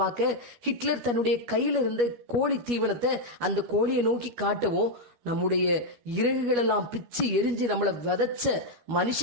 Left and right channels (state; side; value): late; left; 12 ms